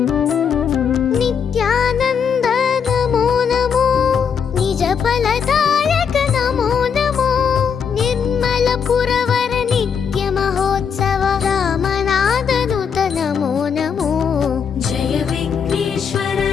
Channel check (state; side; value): quieter; right; 6.9 dB